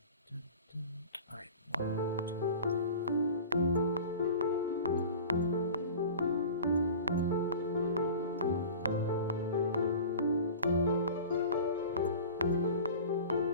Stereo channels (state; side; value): inverted; both; correlation -0.37